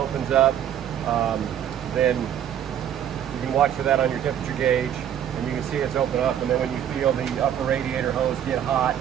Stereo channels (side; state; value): left; quieter; 9.9 dB